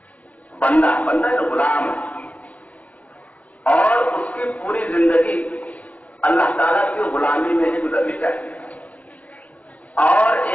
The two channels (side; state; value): right; late; 0.070 ms